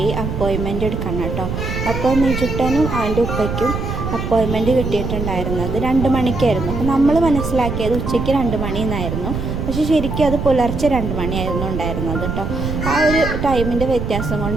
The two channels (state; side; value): noise; right; rumble, 4 dB below the sound